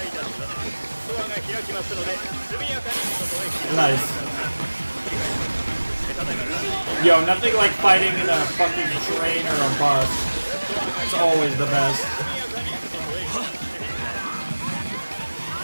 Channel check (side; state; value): both; inverted; correlation -1.00